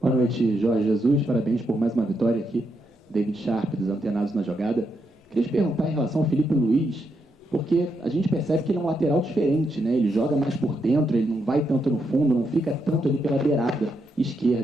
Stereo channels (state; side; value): normal; both; correlation 0.81